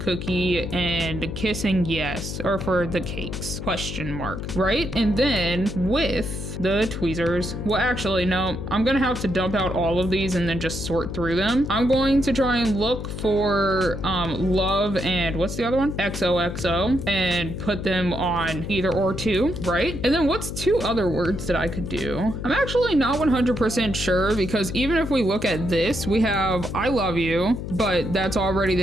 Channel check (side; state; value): left; noise; hum, 6 dB below the sound